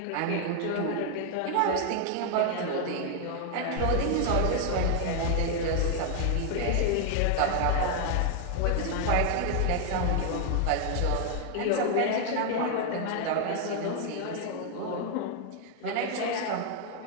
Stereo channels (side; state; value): both; different; correlation 0.00